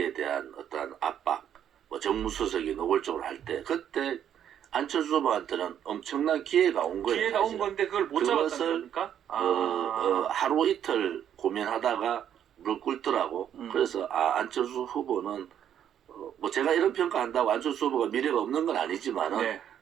대한 어떤 압박, 뭐 정무수석이 노골적으로 할 때 그때 안철수 후보한테는 엄청난 기회가 온 거예요. 기회가 온 건데 그걸 못 잡았다는 겁니까? 하루 이틀 고민하다가 무릎 꿇더라고. 그래서 안철수 후보는 뭐 제가 이런 평가한다고 안철수 후보가 미래가 없는 건 아니지만은 네.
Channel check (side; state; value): left; quieter; 9.7 dB